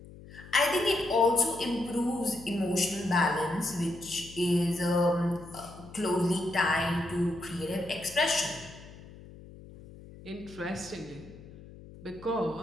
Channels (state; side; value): noise; left; hum, 18 dB below the sound